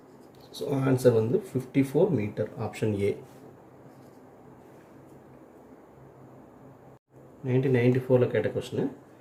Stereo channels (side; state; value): both; identical; correlation 1.00